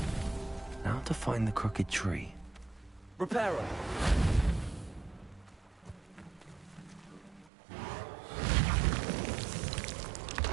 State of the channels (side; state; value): left; drops out; at 7.5 s